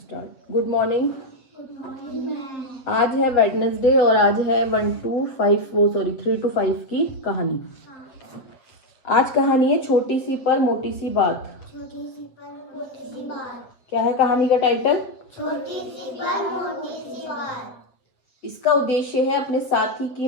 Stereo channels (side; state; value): right; late; 7.8 ms